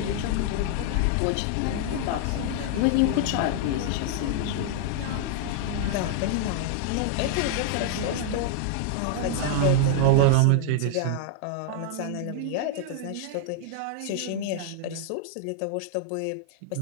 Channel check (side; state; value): both; different; correlation 0.00